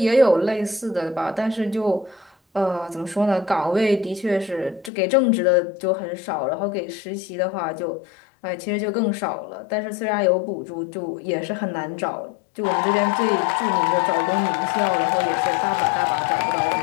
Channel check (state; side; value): drops out; right; at 4.9 s